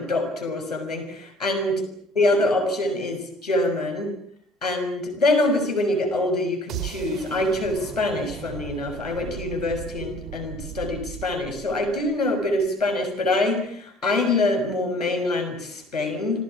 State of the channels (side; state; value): both; normal; correlation 0.53